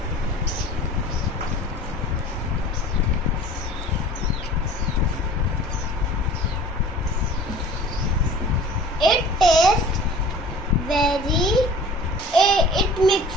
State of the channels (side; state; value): both; normal; correlation 0.45